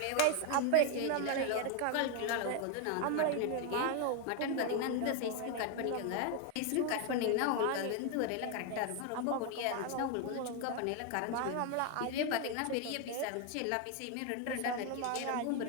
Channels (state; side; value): different; both; correlation 0.01